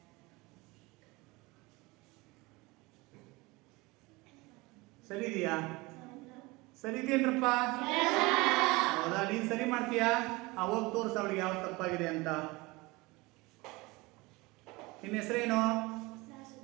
ಸರಿ ಇದೆಯಾ? ಸರಿ ಇದೆಯೇನ್ರಪ್ಪ? ಹೌದಾ? ನೀನ್ ಸರಿ ಮಾಡ್ತೀಯಾ? ಹೋಗಿ ತೋರಿಸ ಅವಳಿಗೆ ಯಾವ್ದು ತಪ್ಪಾಗಿದೆ ಅಂತ. ನಿನ್ನ ಹೆಸರೇನು?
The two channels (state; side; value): quieter; left; 23.3 dB